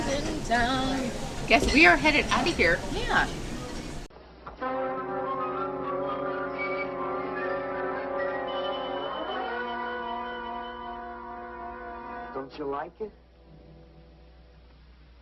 time. Guess we are headed out of here. Yeah. Don't you like it?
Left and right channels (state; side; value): identical; both; correlation 1.00